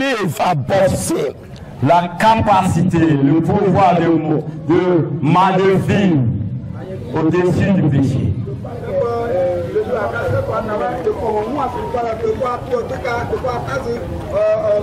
above sin. La capacité, le pouvoir de vivre au-dessus du péché.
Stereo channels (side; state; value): both; identical; correlation 1.00